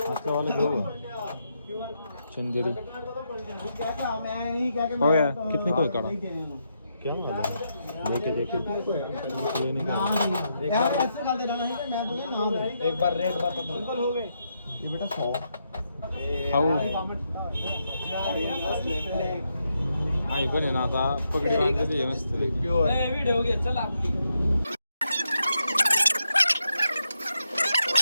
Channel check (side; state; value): both; inverted; correlation -0.81